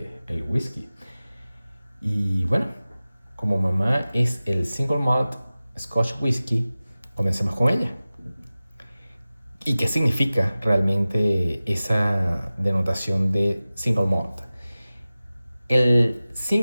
del whisky. Y bueno, como mamá es el single malt Scotch Whisky, comencemos con ella. ¿Y qué significa realmente esa denotación de single malt? El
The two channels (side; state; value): both; inverted; correlation -0.97